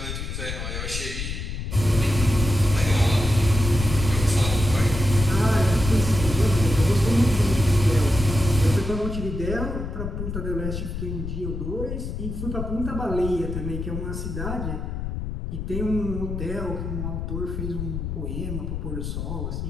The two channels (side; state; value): left; noise; rumble, 5 dB below the sound